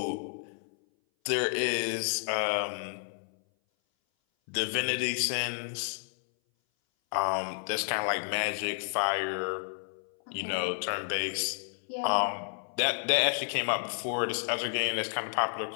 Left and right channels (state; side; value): silent; right; 57 dB below the other